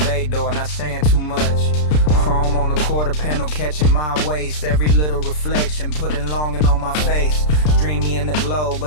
door, not saying too much. Chrome on the quarter panel catching my waist. Every little reflection putting longing on my face. Dreamy in the glow,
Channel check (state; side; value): late; right; 33 ms